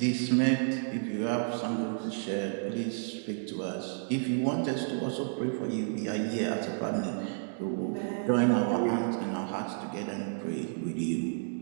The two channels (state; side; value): silent; left; digital silence